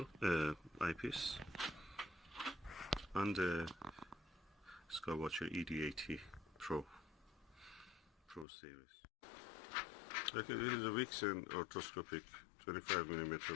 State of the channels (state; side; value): drops out; right; at 8.5 s